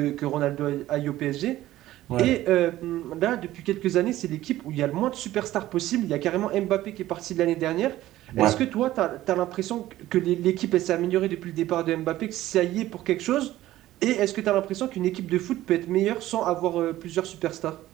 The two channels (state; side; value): quieter; left; 15.0 dB